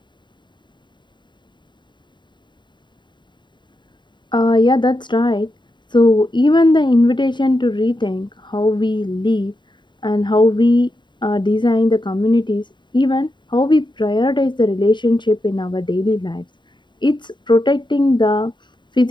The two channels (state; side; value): late; right; 0.22 ms